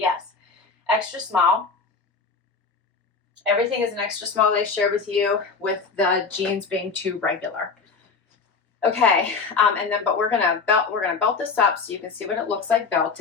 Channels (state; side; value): quieter; right; 4.8 dB